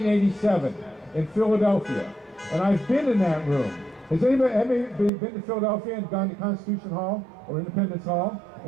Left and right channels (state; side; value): drops out; left; at 5.1 s